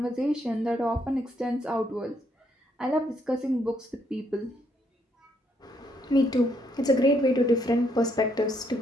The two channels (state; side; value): normal; both; correlation 0.73